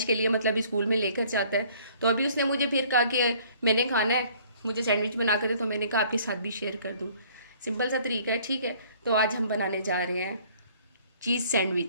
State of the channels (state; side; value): inverted; both; correlation -0.57